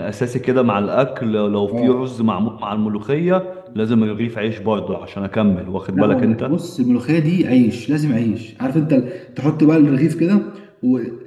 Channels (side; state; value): both; identical; correlation 1.00